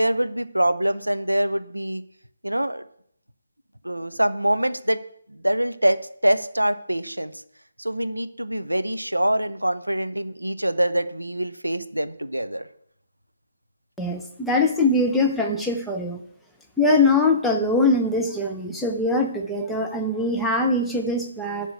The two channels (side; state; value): both; inverted; correlation -0.56